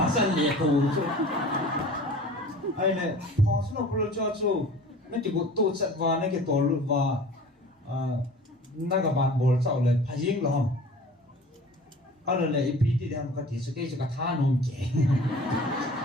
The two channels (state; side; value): normal; both; correlation 0.43